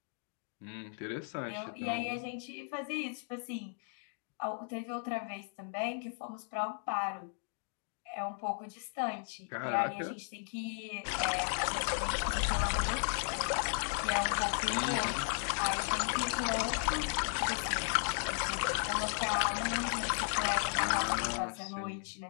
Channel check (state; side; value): silent; right; 54 dB below the other